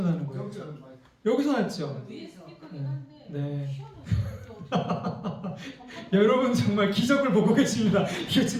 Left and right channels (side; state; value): both; identical; correlation 1.00